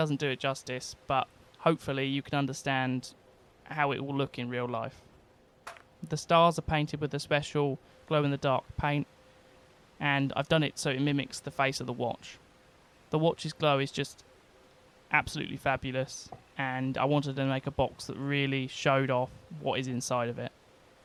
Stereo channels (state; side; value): identical; both; correlation 1.00